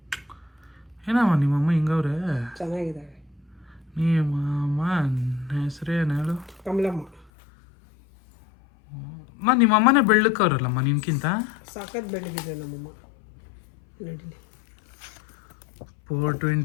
ಏನಮ್ಮ ನಿಮ್ಮಮ್ಮ ಹಿಂಗವ್ರೆ? ಚೆನ್ನಾಗಿದ್ದಾವೆ. ನಿಮ್ಮಮ್ಮ ಹೆಸರೇನು ಹೇಳು? ಕಮಲಮ್ಮ. ನಿಮ್ಮಮ್ಮನೇ ಬೆಳ್ಳಕ್ಕವ್ರಲ್ಲಮ್ಮ ನಿನ್ಕಿಂತ. ಸಾಕತ್ ಬೆಳಗಿದೆ ನಮ್ಮಮ್ಮ. ನಡೀಲಿ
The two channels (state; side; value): drops out; right; at 7.2 s